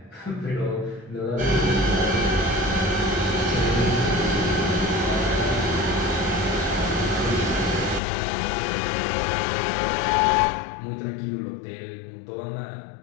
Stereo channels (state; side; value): drops out; right; at 8.0 s